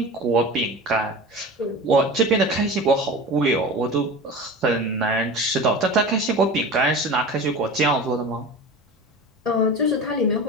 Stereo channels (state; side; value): normal; both; correlation 0.33